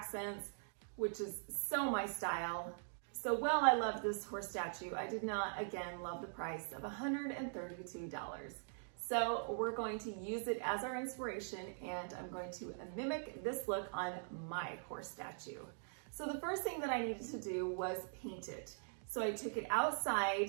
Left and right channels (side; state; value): left; silent; digital silence